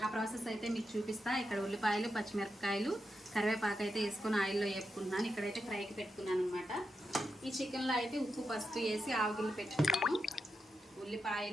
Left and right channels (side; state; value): both; normal; correlation 0.87